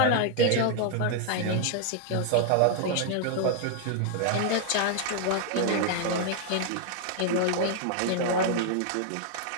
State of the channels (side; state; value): both; different; correlation 0.00